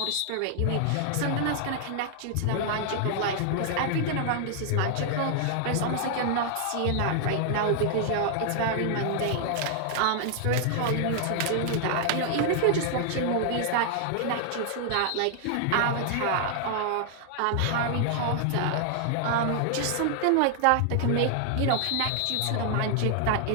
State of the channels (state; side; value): different; both; correlation 0.00